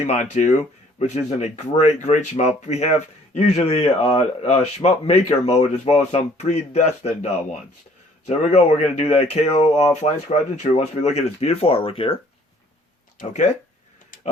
2, which is in a great, great shmup. We have usually a shmup maker mode as well as some predestined ones. So there we go. We're going to do that KO Flying Squadron 2 once we look at this beautiful artwork here. Okay.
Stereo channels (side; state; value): both; normal; correlation 0.58